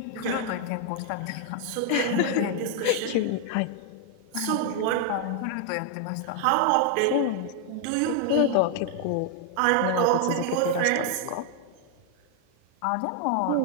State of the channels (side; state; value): both; different; correlation 0.00